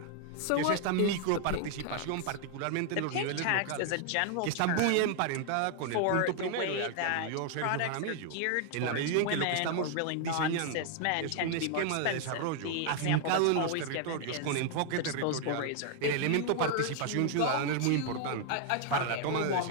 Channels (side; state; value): both; different; correlation 0.00